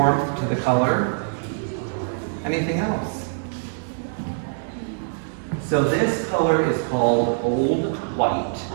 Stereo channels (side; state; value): left; silent; digital silence